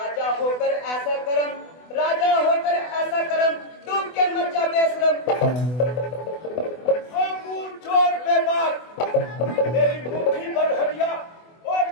होकर ऐसा करम, राजा होकर ऐसा करम, डूब के मर जा बेशरम। चोर बेबाक, तेरी मुट्ठी भर हरिया और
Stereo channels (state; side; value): late; right; 24 ms